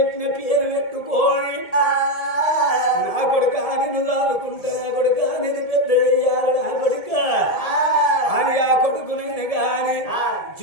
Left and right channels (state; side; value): late; right; 1.7 ms